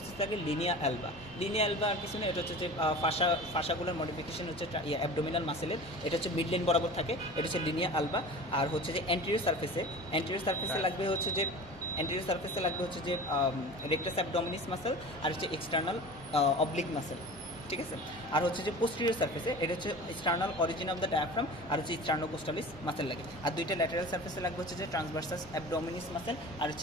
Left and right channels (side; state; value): both; normal; correlation 0.37